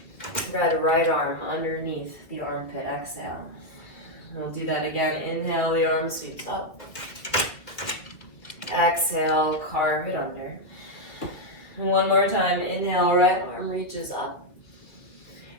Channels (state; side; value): late; right; 2.1 ms